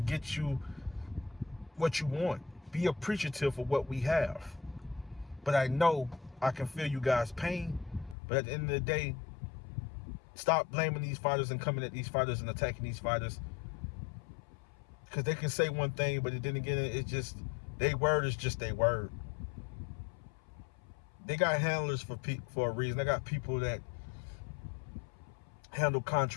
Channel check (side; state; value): right; drops out; at 8.2 s